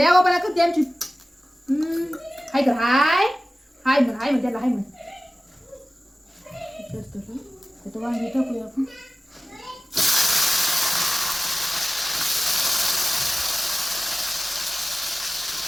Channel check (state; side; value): normal; both; correlation 0.96